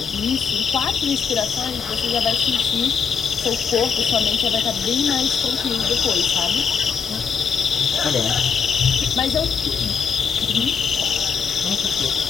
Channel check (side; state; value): right; quieter; 6.3 dB